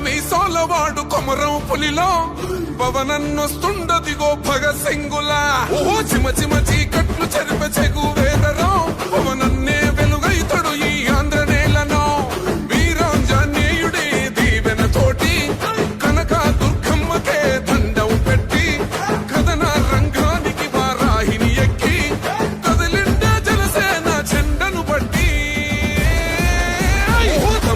మీసాల వాడు కొమరం పులిలో పవనన్నొస్తుండదిగో భగత్ సింగులా. ఓహో చిమ చిమ చీకట్లు చెరిపే చెగు వేదరో పవనన్నే వెలుగైతడు ఈ ఆంధ్ర నేలను. వీరాంజనేయుడి దీవెన తోటి కనక దుర్గమ్మకే దండం పెట్టి కథన రంగానికి వారాహిని ఎక్కి కదిలిండే జనసేన చెండను బట్టి.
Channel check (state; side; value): identical; both; correlation 1.00